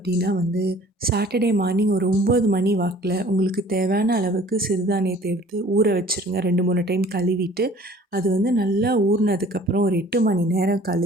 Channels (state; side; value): normal; both; correlation 0.51